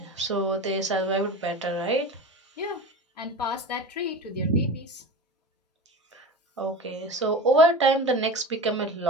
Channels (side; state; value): both; normal; correlation 0.31